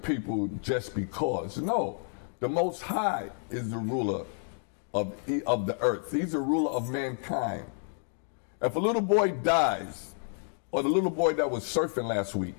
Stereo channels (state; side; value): silent; right; 58 dB below the other